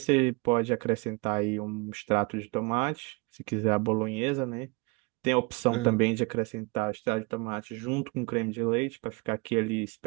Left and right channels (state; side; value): quieter; left; 27.7 dB